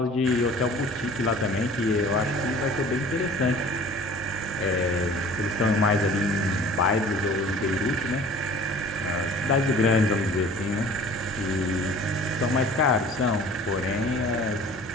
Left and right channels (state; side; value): normal; both; correlation 0.47